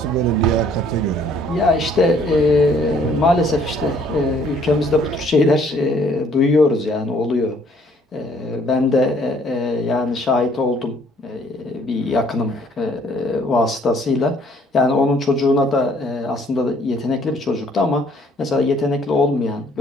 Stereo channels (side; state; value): both; normal; correlation 0.61